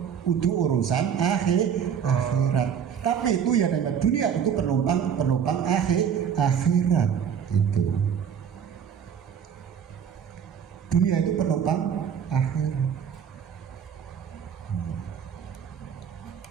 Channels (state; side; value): quieter; left; 7.9 dB